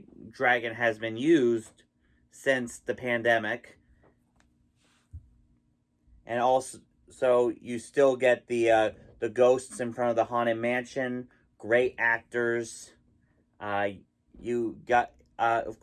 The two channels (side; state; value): both; identical; correlation 1.00